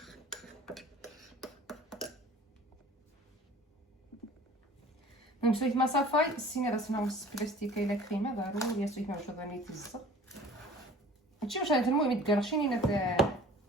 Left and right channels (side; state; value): both; normal; correlation 0.47